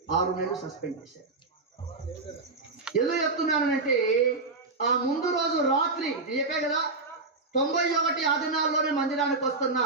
6 నెలలు సస్పెండ్ చేశాడు. ఎందుకు చెప్తున్నానంటే ఆ ముందు రోజు రాత్రి చెప్పే కదా, 91 ఆ దినాల్లోనే మందిరానికి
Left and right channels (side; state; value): left; quieter; 3.7 dB